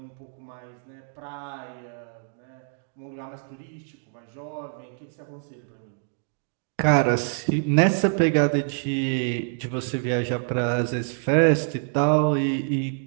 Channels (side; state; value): left; silent; 61 dB below the other